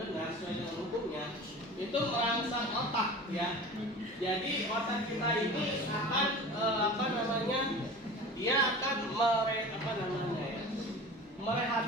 benar sesuai dengan hukumnya, itu merangsang otak ya. Jadi otak kita ini akan dia akan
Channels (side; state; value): both; normal; correlation 0.37